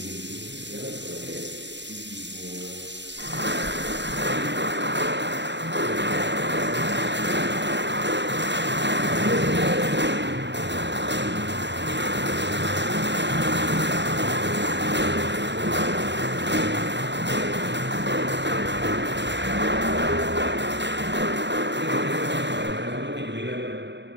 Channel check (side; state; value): left; late; 0.52 ms